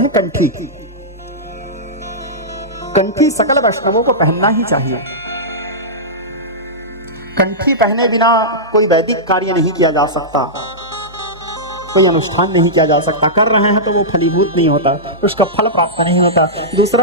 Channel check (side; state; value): both; normal; correlation -0.13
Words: कंठी। कंठी सकल वैष्णवों को पहनना ही चाहिए। कंठी पहने बिना कोई वैदिक कार्य नहीं किया जा सकता, कोई अनुष्ठान नहीं किया जा सकता। कर रहे हैं तो वो फलीभूत नहीं होता, उसका फल प्राप्त नहीं होता।